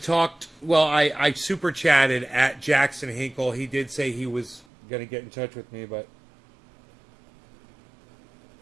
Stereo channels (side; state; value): left; drops out; at 4.7 s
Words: super chatted at Jackson Hinkle. He did say he was going to get in touch with me, but